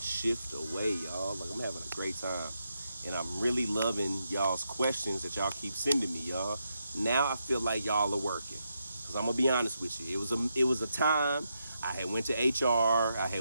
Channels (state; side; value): inverted; both; correlation -0.83